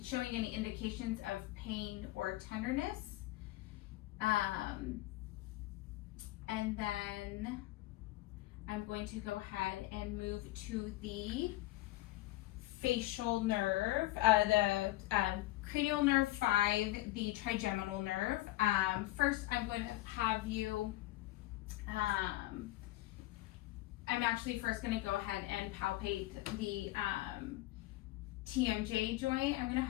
showing any indications of pain or tenderness. And then I'm going to go ahead and move to the facial nerve, the cranial nerve 5, the trigeminal nerve. First, I'm going to have you, I'm actually first going to go ahead and palpate the TMJ joint. I'm going to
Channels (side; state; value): right; quieter; 17.5 dB